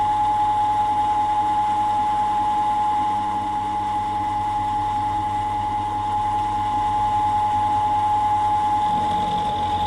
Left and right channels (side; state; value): both; identical; correlation 1.00